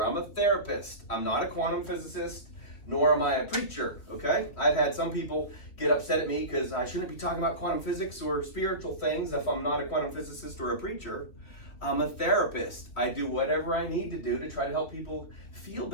I'm a therapist. I'm not a quantum physicist, nor am I a preacher, okay? I've had some people get upset at me because I shouldn't be talking about quantum physics or spiritual things if I'm not a quantum physicist or a preacher. I'm a therapist. I do whatever I need to do to try to help people feel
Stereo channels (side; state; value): right; late; 3.1 ms